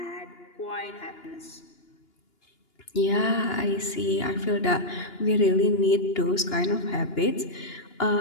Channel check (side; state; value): right; late; 2.9 ms